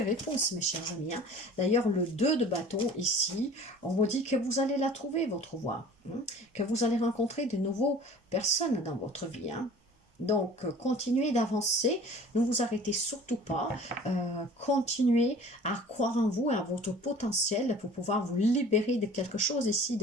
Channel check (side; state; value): both; normal; correlation 0.45